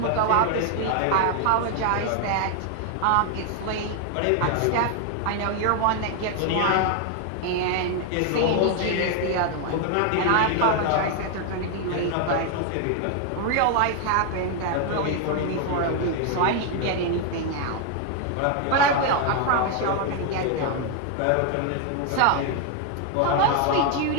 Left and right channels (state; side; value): different; both; correlation 0.00